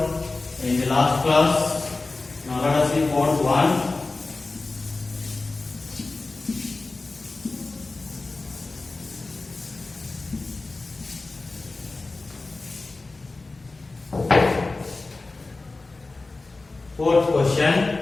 in the last class. Now let us see fourth one. Fourth question.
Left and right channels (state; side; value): quieter; right; 3.4 dB